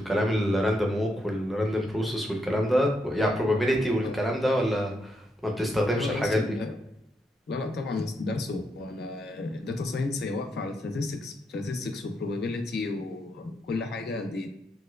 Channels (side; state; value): both; normal; correlation 0.80